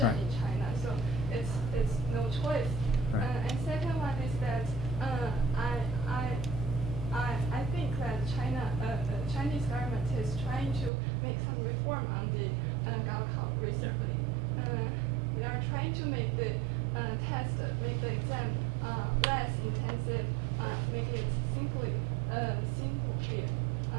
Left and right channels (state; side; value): drops out; left; at 10.9 s